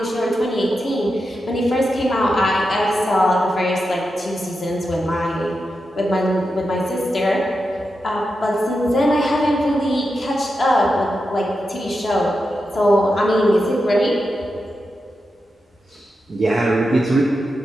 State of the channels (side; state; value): both; normal; correlation 0.88